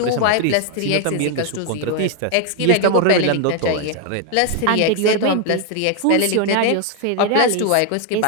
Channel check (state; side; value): different; both; correlation 0.00